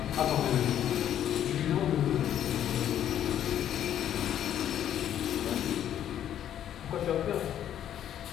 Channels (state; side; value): quieter; right; 10.6 dB